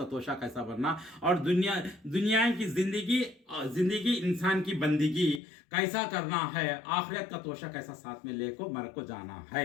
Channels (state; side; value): drops out; right; at 5.4 s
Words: तोशा कैसा बनना और दुनिया की ज़िंदगी इंसान की बंदगी कैसा करना है, आखिरत का तोशा कैसा साथ में लेको मर को जाना